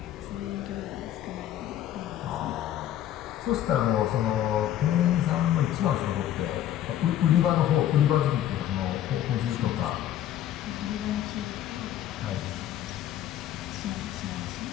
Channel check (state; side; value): quieter; right; 11.8 dB